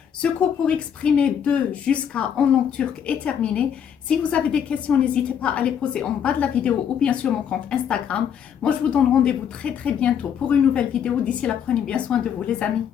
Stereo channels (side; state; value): right; quieter; 8.3 dB